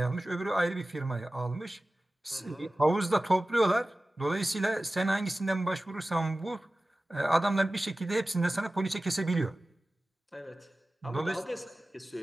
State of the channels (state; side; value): normal; both; correlation 0.96